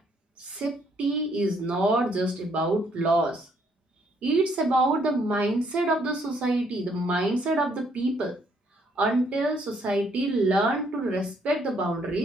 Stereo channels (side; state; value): both; normal; correlation 0.69